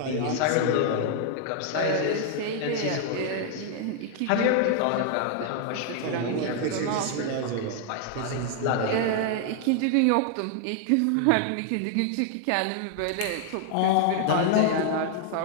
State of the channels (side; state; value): both; different; correlation 0.00